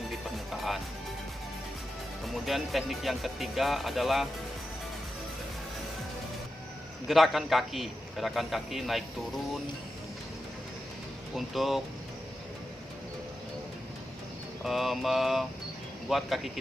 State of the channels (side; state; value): both; normal; correlation 0.90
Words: di permukaan. Kemudian teknik yang ketiga adalah gerakan kaki naik turun untuk membuat kaki